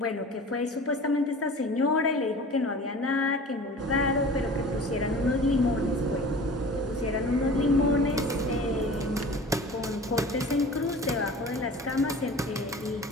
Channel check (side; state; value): both; normal; correlation 0.40